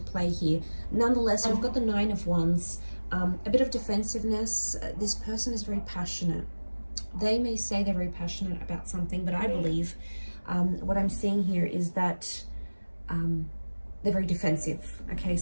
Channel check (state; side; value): inverted; both; correlation -1.00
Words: play here. Nonetheless, we've got the Nine of Wands. A bit of defensiveness. This person is very passionate. They may say they're very passionate about something, but I believe what I'm seeing here is that they're very defensive. Okay,